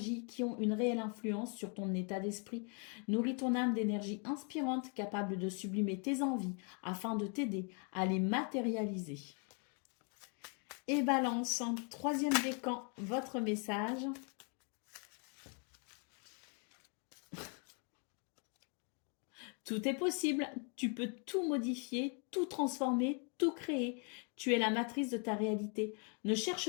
qui ont une réelle influence sur ton état d'esprit. Nourris ton âme d'énergie inspirante capable de sublimer tes envies afin de t'aider à les matérialiser. Et balance, troisième décan, votre message. Tout est possible, tu peux tout modifier, tout transformer, tout créer. Tu es la matrice de ta réalité. Ne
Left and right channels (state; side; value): quieter; right; 38.5 dB